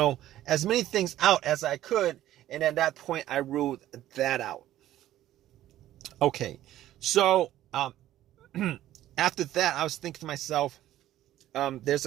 as many things out as I could. And at that point, I ruled that out. Okay, so after that, I was thinking to myself, there's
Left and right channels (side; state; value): left; quieter; 13.5 dB